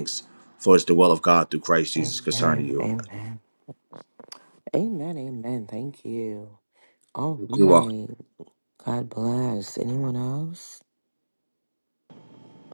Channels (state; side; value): inverted; both; correlation -1.00